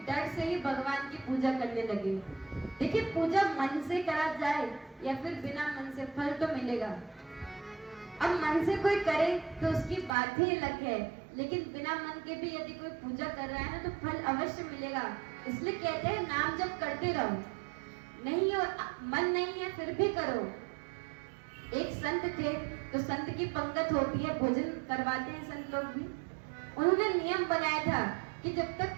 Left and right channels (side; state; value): left; drops out; at 10.1 s